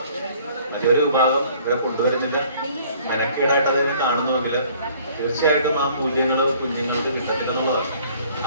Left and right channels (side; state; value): both; inverted; correlation -0.56